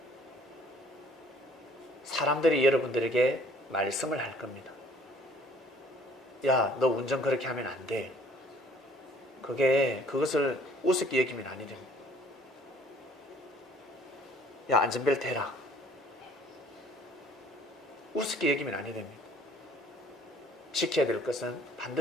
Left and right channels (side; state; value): both; normal; correlation 0.57